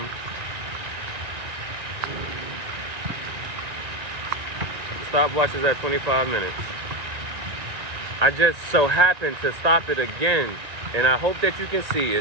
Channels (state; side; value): late; left; 1.9 ms